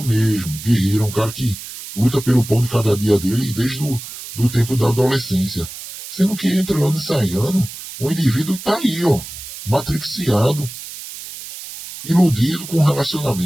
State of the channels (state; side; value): noise; right; hiss, 12 dB below the sound